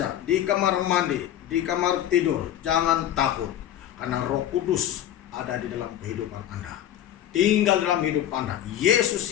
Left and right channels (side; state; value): right; quieter; 11.5 dB